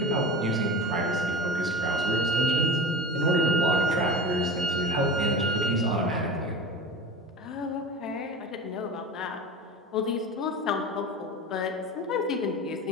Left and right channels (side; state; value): both; normal; correlation 0.32